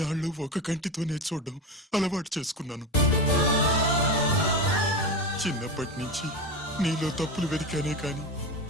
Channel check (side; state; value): both; normal; correlation 0.21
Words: ఒక కంటితోనే చూడడం అలవాటు చేసుకున్నాను. చిన్నప్పటి నుంచి నీలో తప్పులు వెతికానే కాని